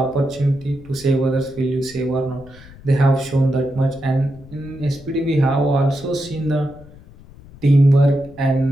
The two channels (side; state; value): left; noise; rumble, 21 dB below the sound